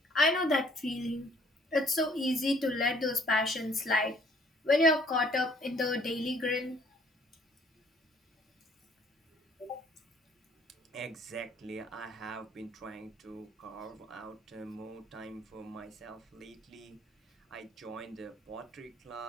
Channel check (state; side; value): normal; both; correlation 0.60